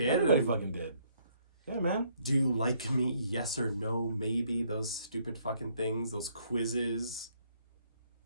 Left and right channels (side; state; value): both; inverted; correlation -0.67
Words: Everybody fucking did. Yeah, man. Do you like me? Yes or no? Maybe. Those stupid fucking things. Those quizzes.